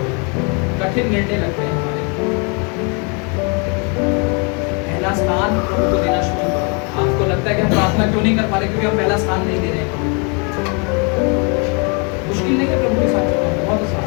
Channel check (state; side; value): quieter; right; 34.5 dB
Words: कठिन निर्णय लगते हैं हमारे। पहला स्थान प्रभु को देना शुरू करो। आपको लगता है कि हम प्रार्थना क्यों नहीं कर पा रहे? क्योंकि हम पहला स्थान नहीं दे रहे हैं। मुश्किल नहीं है प्रभु के साथ चलना, बहुत आसान